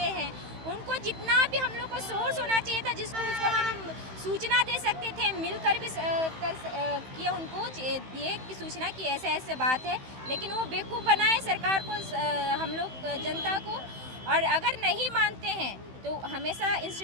हैं, उनको जितना भी हम लोग को सोर्स होना चाहिए था जिसको उसको हम सूचना दे सकते थे, मिलकर भी किए उनको दिए कि सूचना की ऐसे ऐसे बात है, लेकिन वो बेवकूफ़ बनाए सरकार को, हम लोग जनता को। और अगर नहीं मानते हैं तो हमेशा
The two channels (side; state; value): left; late; 16 ms